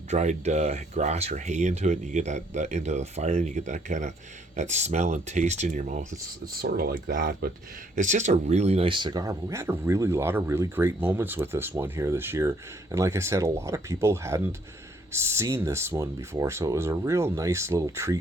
grass or hay into it, and you get that into the fire, and you get that kind of that smell and taste in your mouth. It's sort of like that, but it's just a really nice cigar. But we had a really lot of really great moments with this one here this year, and like I said, a lot of people hadn't seen this one before, so it was a real nice little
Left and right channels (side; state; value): both; normal; correlation 0.66